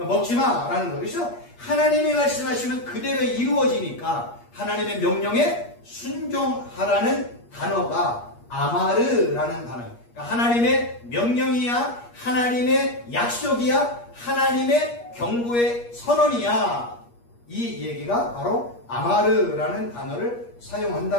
먹지마! 라는 거예요. 그래서 하나님이 말씀하시면 그대로 이루어지니까 하나님의 명령에 순종하라는 단어가 아마르라는 단어예요. 그러니까 하나님의 명령이야, 하나님의 약속이야, 하나님의 경고의 선언이야. 이 얘기가 바로 아마르라는 단어를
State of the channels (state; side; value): late; right; 8.4 ms